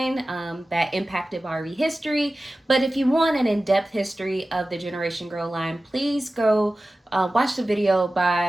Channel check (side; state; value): both; normal; correlation 0.96